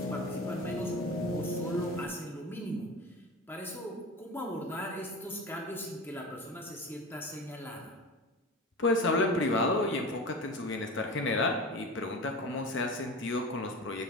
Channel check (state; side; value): normal; both; correlation 0.31